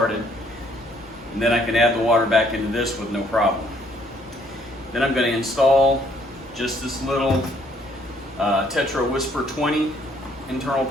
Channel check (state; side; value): normal; both; correlation 0.65